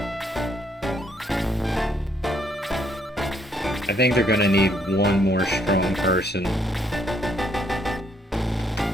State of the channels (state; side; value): normal; both; correlation 0.71